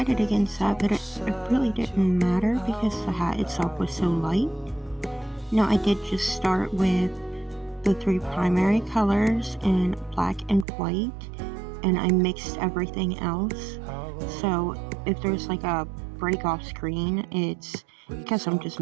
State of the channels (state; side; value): drops out; left; at 10.7 s